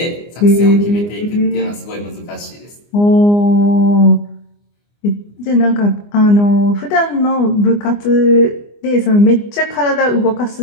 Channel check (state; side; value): late; right; 24 ms